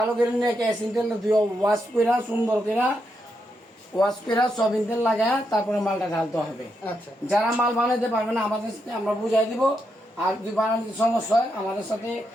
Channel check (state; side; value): normal; both; correlation 0.82